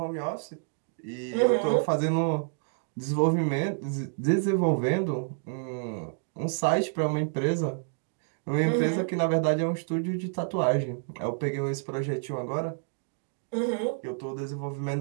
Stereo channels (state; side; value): silent; left; digital silence